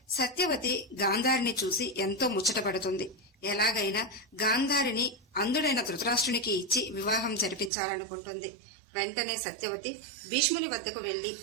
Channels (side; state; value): left; drops out; at 7.7 s